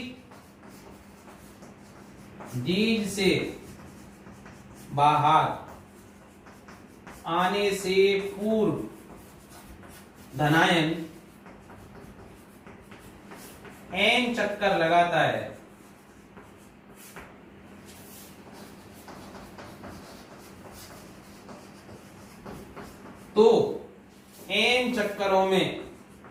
डीज से बाहर आने से पूर्व धनायन n चक्कर लगाता है तो n चक्करों में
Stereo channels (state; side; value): identical; both; correlation 1.00